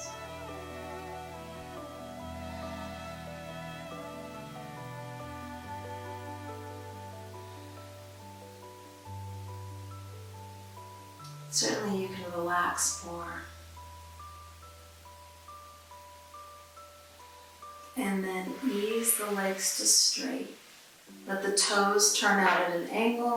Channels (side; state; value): both; identical; correlation 1.00